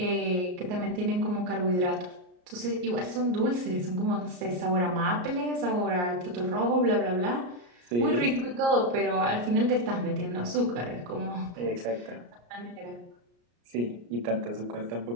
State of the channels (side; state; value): left; late; 34 ms